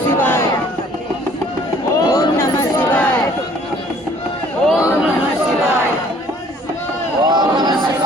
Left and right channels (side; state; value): both; normal; correlation 0.57